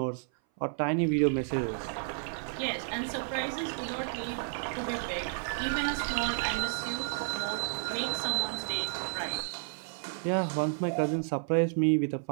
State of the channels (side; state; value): left; silent; 57 dB below the other